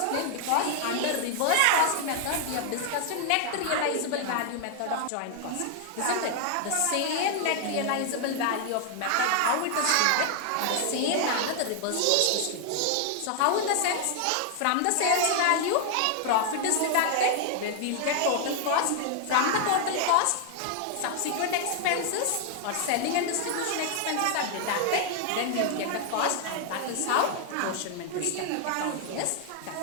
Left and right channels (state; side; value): different; both; correlation 0.00